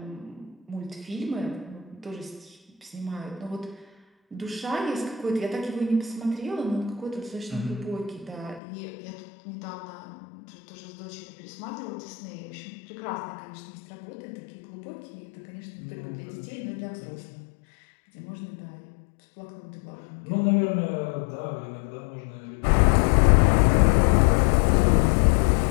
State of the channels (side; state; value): right; drops out; at 8.6 s